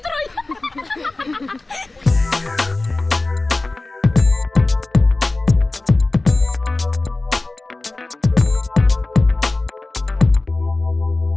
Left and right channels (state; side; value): quieter; right; 3.1 dB